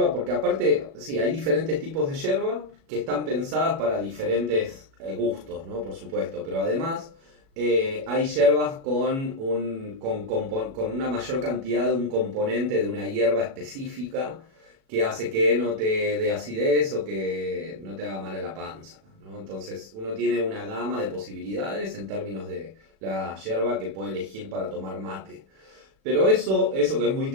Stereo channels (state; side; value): late; left; 36 ms